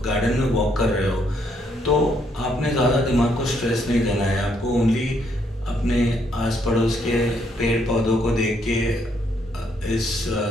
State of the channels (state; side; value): normal; both; correlation 0.72